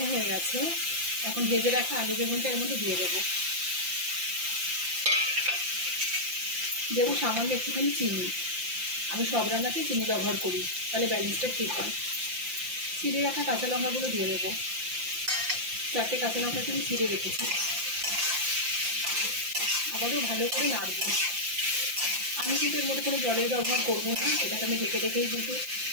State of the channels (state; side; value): late; left; 5.8 ms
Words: হয়ে গেছে, এখন ভেজে রাখা আলু বেগুনটা এর মধ্যে দিয়ে দেবো। দেবো সামান্য একটুখানি চিনি। আমি সব রান্নাতেই চিনি ব্যবহার করি, তাহলে ব্যালেন্সটা ঠিক হয়। চিড়ে রাখা কাঁচা লঙ্কাগুলো দিয়ে দেবো। 4টে কাঁচা লঙ্কাকে আমি চিড়ে রেখেছি। আবারও ভালো করে নাড়বো। আমি কিন্তু এর মধ্যে কোনো জলের ব্যবহার করবো না, এটাকে আমি ঢেকে ঢেকেই, কিন্তু